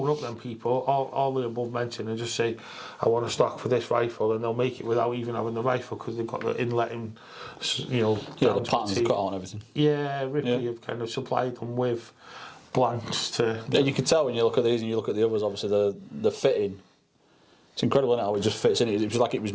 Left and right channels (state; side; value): identical; both; correlation 1.00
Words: up them people, all the above mentioned, and just say, I want a stock for this rifle, and they'll make it without even having the rifle because they've got the inlet in, the patterns cut out and everything. Yeah, Ripley have kind of supplied them with blanks to. And you can tell when you look at these and you look at the others, obviously the fitting. It's incredible, isn't it, how it just fits in. It was like it was